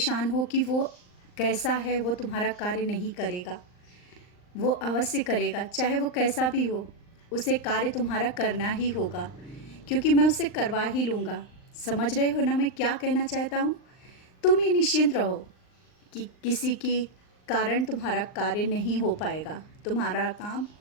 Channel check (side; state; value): right; late; 39 ms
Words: हो कि वो कैसा है, वो तुम्हारा कार्य नहीं करेगा। वो अवश्य करेगा, चाहे वो कैसा भी हो। उसे कार्य तुम्हारा करना ही होगा, क्योंकि मैं उसे करवा ही लूँगा। समझ रहे हो ना मैं क्या कहना चाहता हूँ? तुम ये निश्चिंत रहो कि किसी के कारण तुम्हारा कार्य नहीं हो पाएगा, तुम्हारा काम